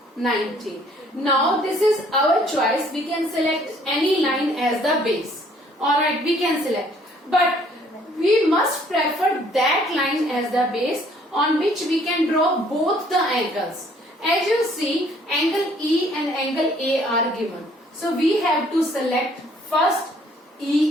90. Now this is our choice. We can select any line as the base. Alright, we can select. But we must prefer that line as the base on which we can draw both the angles. As you see, angle E and angle A are given. So we have to select first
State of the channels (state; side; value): normal; both; correlation 0.61